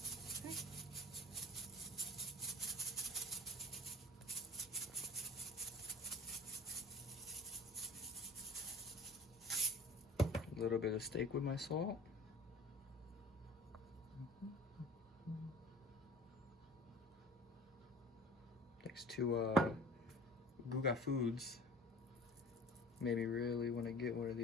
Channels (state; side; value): normal; both; correlation 0.46